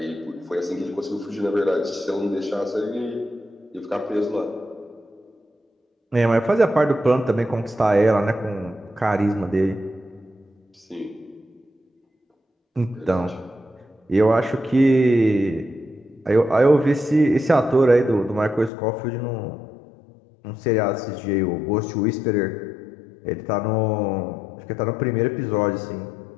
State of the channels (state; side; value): drops out; right; at 18.7 s